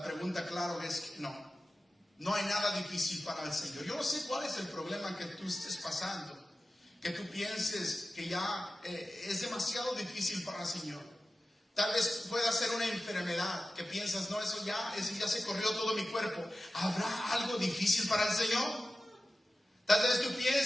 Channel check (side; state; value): both; normal; correlation 0.95